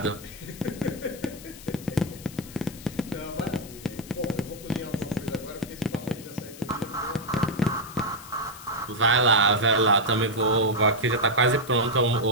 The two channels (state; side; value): noise; left; hiss, 17 dB below the sound